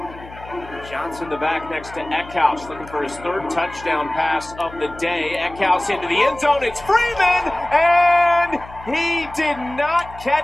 Johnson the back next to Eckhouse, looking for his 3rd touchdown pass of the day. Eckhouse into the end zone. It's Freeman, and he did not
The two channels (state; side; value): noise; left; hum, 18 dB below the sound